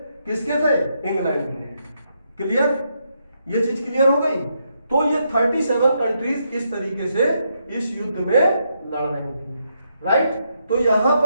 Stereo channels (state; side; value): inverted; both; correlation -0.79